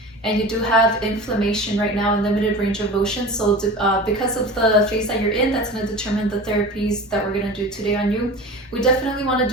and you do have inflammation right now and limited range of motion. So because of the phase that you're in, that's going to determine the therapies that we're going to do today on you. We definitely want to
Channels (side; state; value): both; normal; correlation 0.34